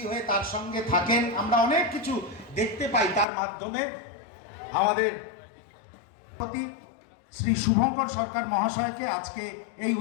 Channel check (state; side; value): drops out; right; at 3.2 s